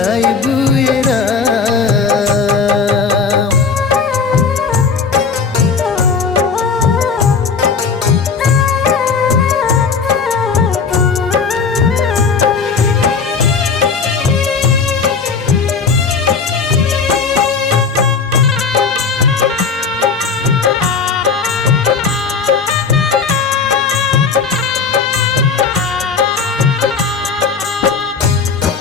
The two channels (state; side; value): quieter; right; 5.3 dB